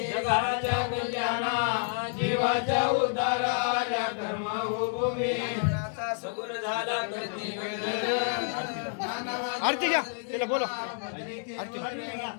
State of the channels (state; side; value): silent; right; digital silence